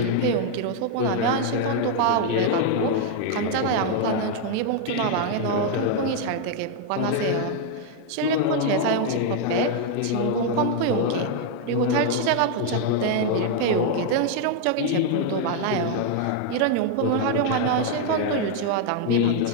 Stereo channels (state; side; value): different; both; correlation 0.00